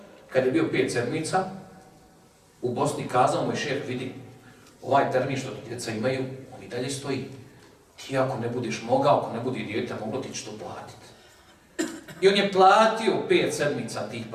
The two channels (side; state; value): both; identical; correlation 1.00